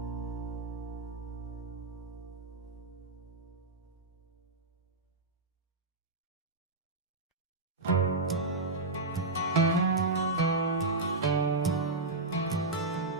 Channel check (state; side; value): quieter; left; 3.2 dB